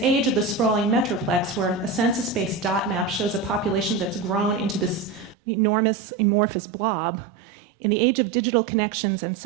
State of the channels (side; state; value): left; drops out; at 5.4 s